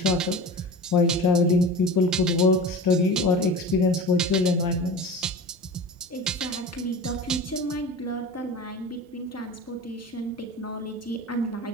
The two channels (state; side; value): normal; both; correlation 0.34